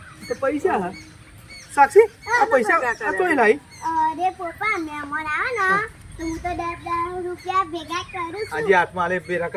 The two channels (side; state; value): both; identical; correlation 1.00